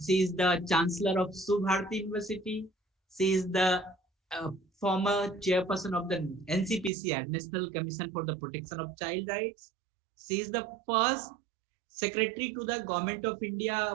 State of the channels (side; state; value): left; drops out; at 6.9 s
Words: she is the Chancellor of Subharati University. She is the former chairperson of the NCPCR, National Commission for the Protection of Child Rights. She is the first secretary to the Government of